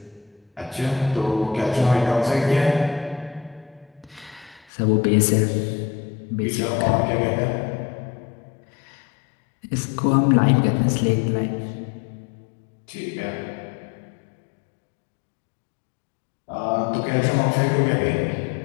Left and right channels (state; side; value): drops out; right; at 4.7 s